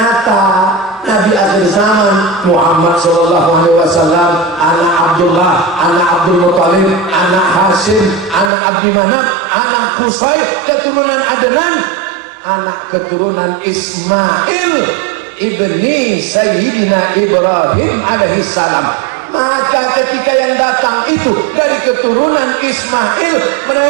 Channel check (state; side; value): drops out; left; at 8.5 s